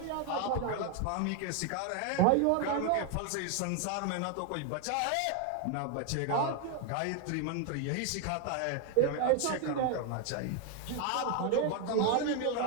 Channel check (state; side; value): different; both; correlation 0.01